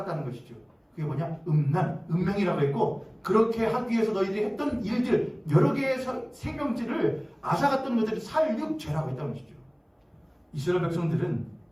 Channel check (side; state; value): both; identical; correlation 1.00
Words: 것이죠. 그게 뭐냐? 음란, 음행이라고 했고, 그렇게 하기 위해서 너희들이 했던 일들, 여러 개의 생명질을 앗아갔던 것들을 살육죄라고 했다는 것이죠. 이스라엘 백성들은